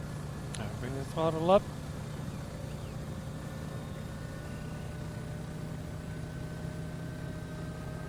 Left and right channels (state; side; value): identical; both; correlation 1.00